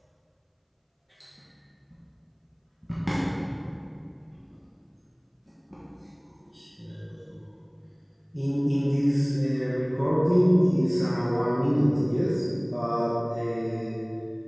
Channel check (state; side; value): identical; both; correlation 1.00